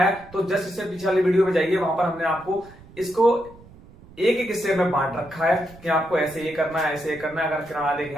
है, तो जस्ट इससे पीछे वाली वीडियो में जाइए। वहां पर हमने आपको इसको एक एक हिस्से में बांट रखा है कि आपको ऐसे ये करना है, ऐसे ये करना है। अगर किरण आरेख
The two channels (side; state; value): right; noise; rumble, 22 dB below the sound